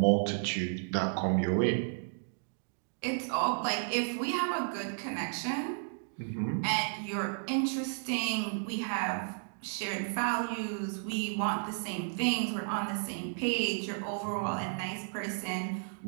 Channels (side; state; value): left; silent; digital silence